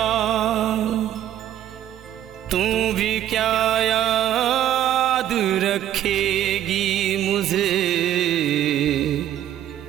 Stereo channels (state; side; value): quieter; left; 11.8 dB